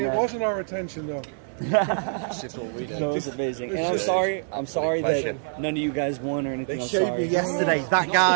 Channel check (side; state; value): left; silent; 62 dB below the other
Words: It that. wasn't our intention, though. It's just what we do. No, it's amazing. And I'm sorry that none of you guys won or anything. They I'm showed sorry. me yesterday, that